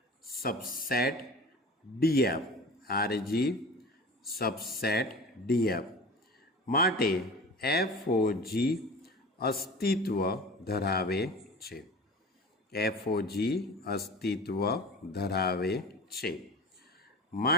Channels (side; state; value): both; normal; correlation 0.36